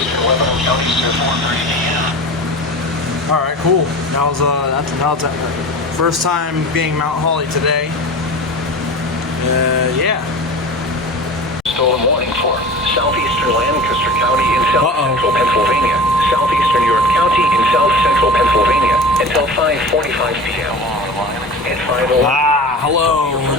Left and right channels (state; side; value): normal; both; correlation 0.34